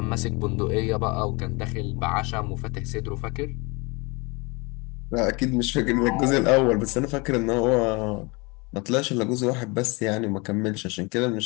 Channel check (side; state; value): right; quieter; 27.6 dB